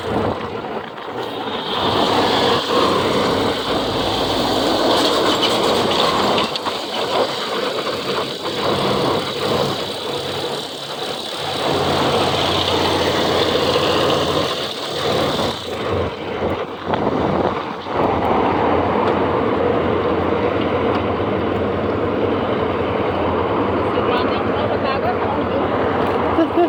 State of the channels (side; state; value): both; identical; correlation 1.00